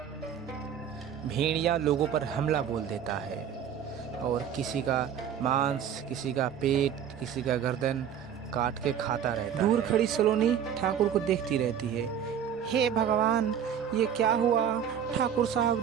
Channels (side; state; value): left; quieter; 8.7 dB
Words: भेड़िया लोगों पर हमला बोल देता है और किसी का मांस, किसी का पेट, किसी का गर्दन काट के खाता रहता है। दूर खड़ी सलोनी ठाकुर को देखती रहती है। हे भगवान, ये क्या हुआ? ठाकुर साहब